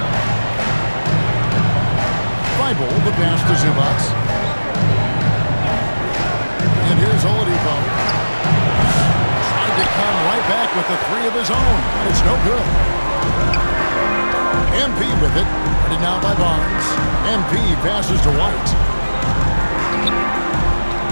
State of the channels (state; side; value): inverted; both; correlation -1.00